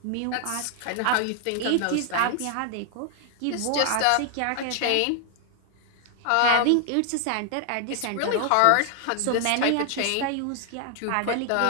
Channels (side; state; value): both; different; correlation 0.00